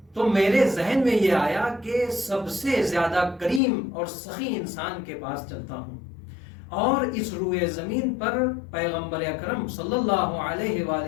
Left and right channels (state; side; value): drops out; right; at 3.6 s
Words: تو میرے ذہن میں یہ آیا کہ سب سے زیادہ کریم اور سخی انسان کے پاس چلتا ہوں، اور اس روئے زمین پر پیغمبر اکرم صلی اللہ علیہ